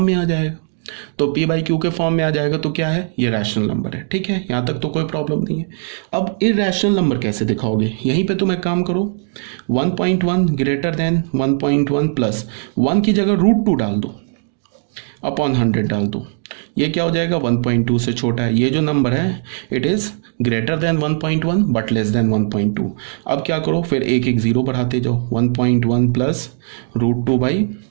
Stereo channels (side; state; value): left; silent; digital silence